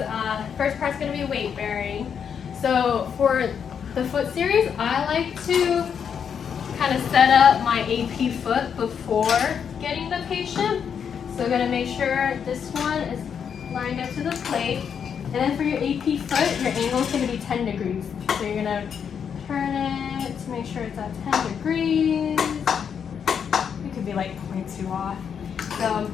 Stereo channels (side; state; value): right; quieter; 7.4 dB